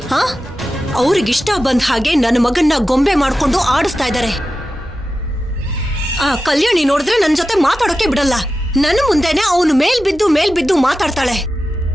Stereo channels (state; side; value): normal; both; correlation 0.92